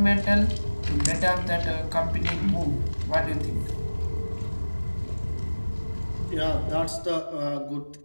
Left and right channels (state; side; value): inverted; both; correlation -1.00